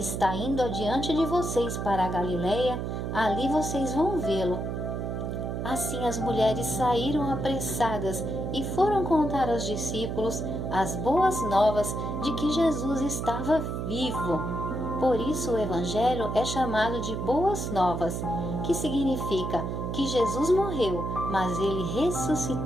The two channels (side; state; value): right; noise; hum, 3 dB below the sound